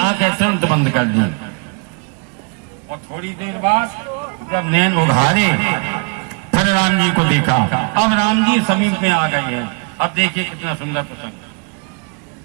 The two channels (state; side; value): quieter; left; 35.2 dB